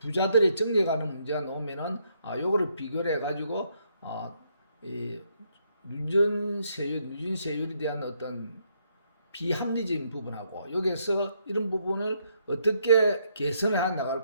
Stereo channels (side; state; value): both; inverted; correlation -0.73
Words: 정리에 관한 문제가 나오면은 요거를 비교를 해가지고 이 누진세율에 대한 어떤 비합리적인 부분하고 여기에서 이런 부분을 어떻게 개선해 나갈